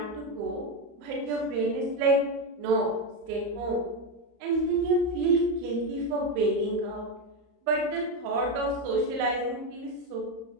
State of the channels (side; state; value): left; late; 34 ms